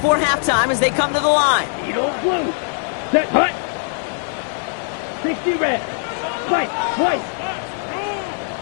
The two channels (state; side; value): silent; right; 56 dB below the other